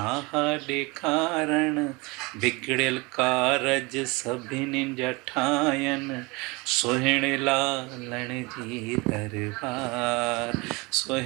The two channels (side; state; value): left; quieter; 26.0 dB